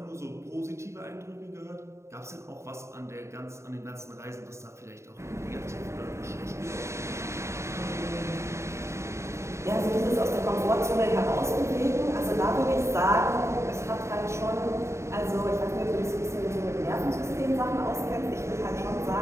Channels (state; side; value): late; left; 0.14 ms